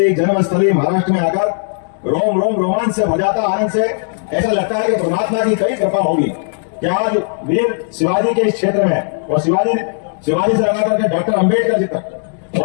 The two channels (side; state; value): right; silent; digital silence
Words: जन्मस्थली महाराष्ट्र में आकर रोम रोम रोमांच से भर जाता, आनंद से ऐसा लगता है कि परमात्मा की कई कृपा होगी कि आज वीर शिवाजी के इस क्षेत्र में और शिवाजी से लगा करके डॉक्टर अंबेडकर जी तक,